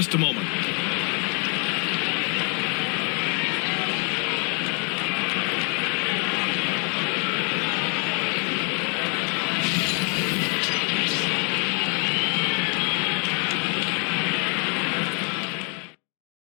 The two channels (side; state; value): right; quieter; 37.1 dB